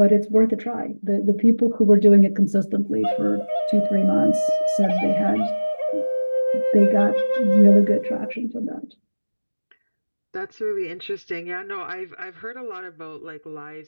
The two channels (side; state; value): both; inverted; correlation -1.00